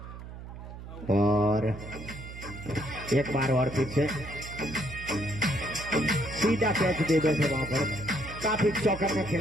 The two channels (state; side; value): noise; right; hum, 12 dB below the sound